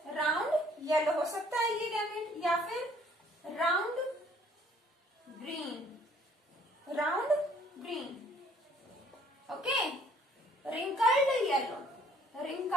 round yellow हो सकता है ये गैमेट, या फिर round green, round green. Okay, wrinkled yellow,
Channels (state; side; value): normal; both; correlation 0.60